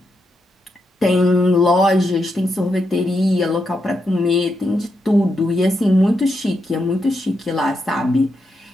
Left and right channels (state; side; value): normal; both; correlation 0.83